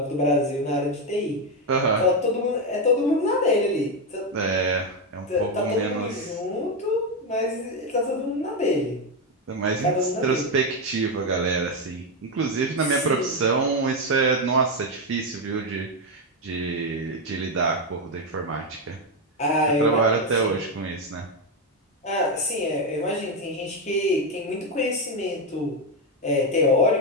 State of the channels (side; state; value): both; normal; correlation 0.07